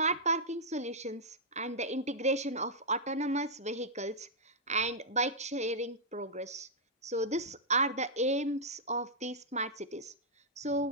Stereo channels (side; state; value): both; normal; correlation -0.09